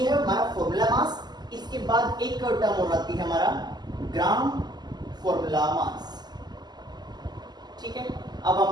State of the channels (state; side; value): late; left; 0.20 ms